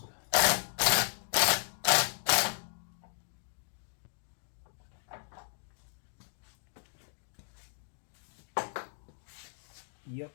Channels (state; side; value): silent; right; digital silence